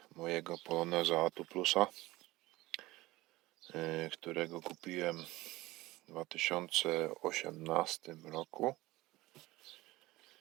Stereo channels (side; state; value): left; quieter; 19.2 dB